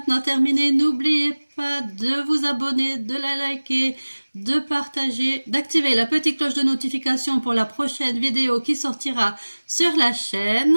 terminée. N'oubliez pas de vous abonner, de la liker, de partager, d'activer la petite cloche de notification pour la prochaine vidéo qui sortira sur la chaîne.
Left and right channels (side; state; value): both; inverted; correlation -1.00